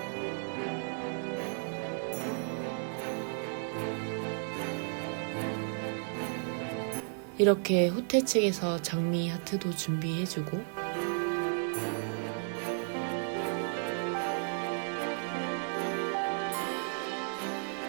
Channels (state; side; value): silent; left; 55 dB below the other